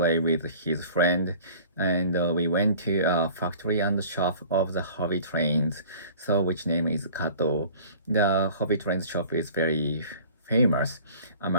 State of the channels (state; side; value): inverted; both; correlation -0.47